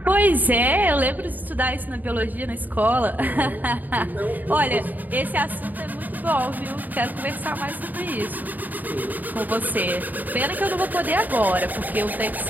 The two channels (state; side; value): late; left; 0.085 ms